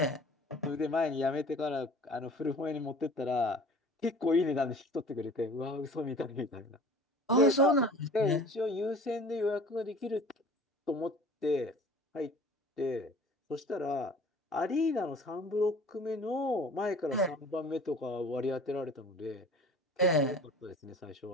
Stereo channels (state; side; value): normal; both; correlation 0.45